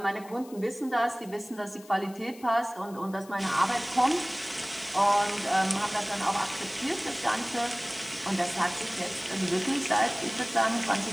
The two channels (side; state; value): left; noise; hiss, 22 dB below the sound